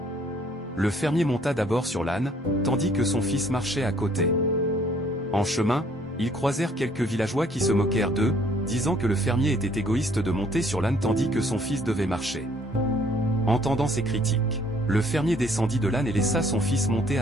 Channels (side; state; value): both; normal; correlation 0.62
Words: Le fermier monta d'abord sur l'âne, tandis que son fils marchait à côté. En chemin, ils croisèrent quelques villageois qui se moquèrent d'eux, disant que le fermier était égoïste de monter sur l'âne tandis que son fils devait marcher. Entendant ces critiques, le fermier descendit de l'âne et laissa son fils monter